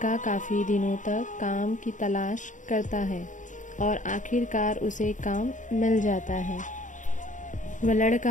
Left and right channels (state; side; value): late; right; 0.37 ms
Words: काफ़ी दिनों तक काम की तलाश करता है और आखिरकार उसे काम मिल जाता है। वह